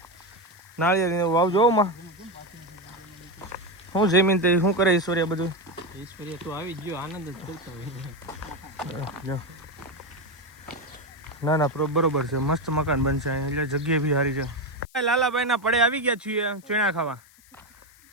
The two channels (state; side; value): noise; left; hiss, 27 dB below the sound